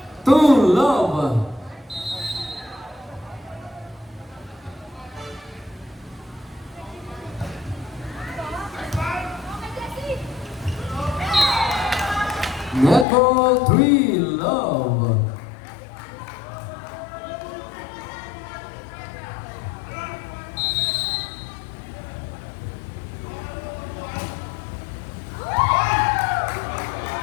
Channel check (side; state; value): right; drops out; at 13.1 s